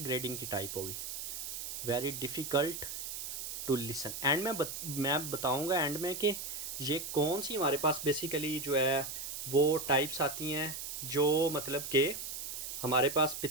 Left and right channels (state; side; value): noise; right; hiss, 6 dB below the sound